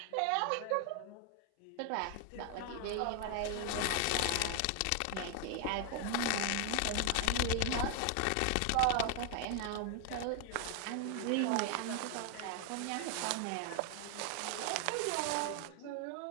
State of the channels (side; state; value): both; different; correlation 0.01